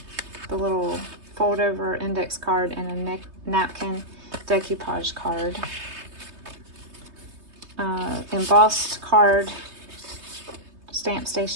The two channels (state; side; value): late; left; 3.2 ms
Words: The little fold over index card and a napkin decoupage card. Embossed card, stamp